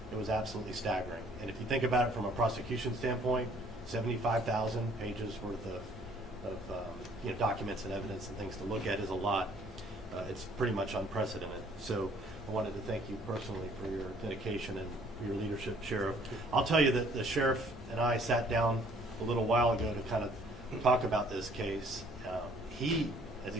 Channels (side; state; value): both; normal; correlation 0.59